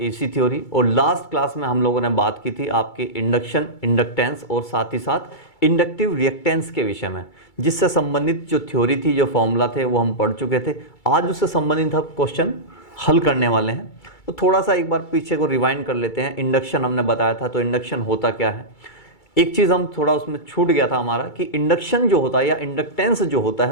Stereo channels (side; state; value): right; late; 2.3 ms